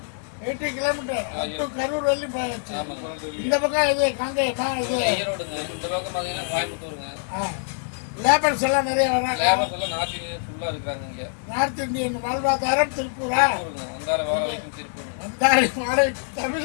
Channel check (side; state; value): right; silent; digital silence